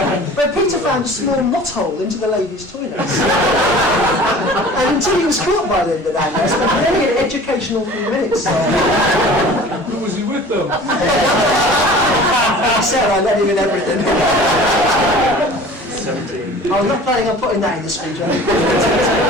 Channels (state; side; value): normal; both; correlation 0.43